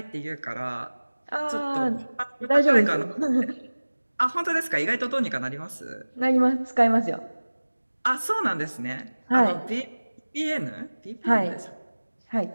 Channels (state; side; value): inverted; both; correlation -1.00